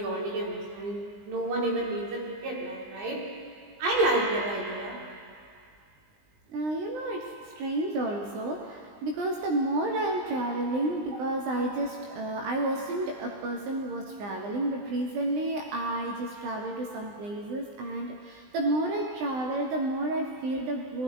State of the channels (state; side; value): late; left; 20 ms